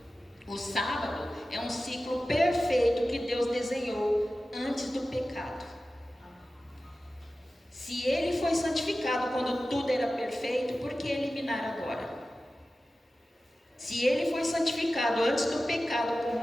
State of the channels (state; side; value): normal; both; correlation 0.95